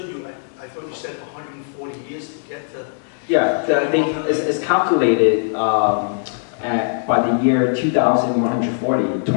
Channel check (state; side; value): silent; right; digital silence